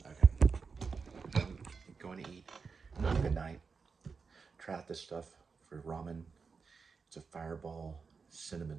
Okay. I'm going to eat. Good night. Try out this stuff for ramen. It's a fireball cinnamon.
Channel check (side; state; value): left; quieter; 5.1 dB